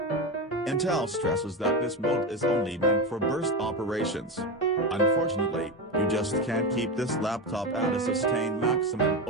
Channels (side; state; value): both; normal; correlation 0.17